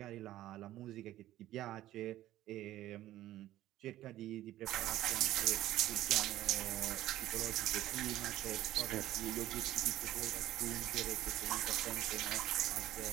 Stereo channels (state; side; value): quieter; left; 14.4 dB